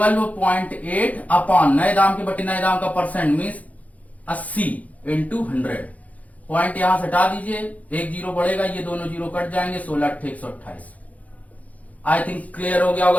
अपॉन नए दाम के बटे नए दाम का परसेंट मीन्स 80 इंटू 100। पॉइंट यहां से हटा दीजिए, एक जीरो बढ़ेगा, ये दोनों जीरो कट जाएंगे, 16/128। आई थिंक क्लियर हो गया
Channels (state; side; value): late; right; 0.071 ms